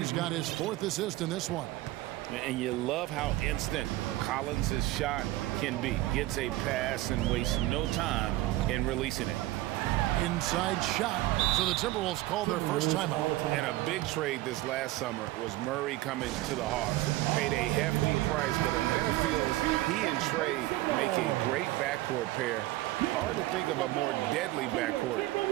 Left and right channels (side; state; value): left; quieter; 17.3 dB